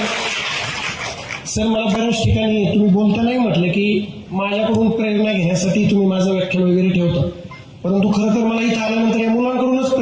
सर, मला बऱ्याच ठिकाणी तुम्ही बोलतानाही म्हटलं की माझ्याकडून प्रेरणा घेण्यासाठी तुम्ही माझं व्याख्यान वगैरे ठेवता, परंतु खरं तर मला इथं आल्यानंतर या मुलांकडूनच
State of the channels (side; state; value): both; identical; correlation 1.00